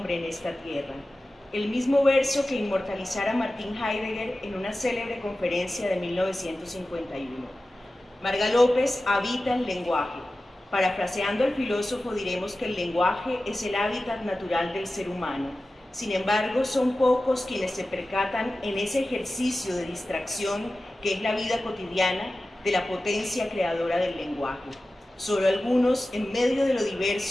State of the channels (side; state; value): both; normal; correlation 0.95